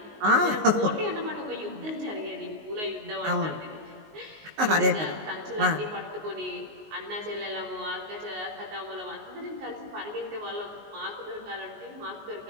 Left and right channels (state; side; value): late; left; 19 ms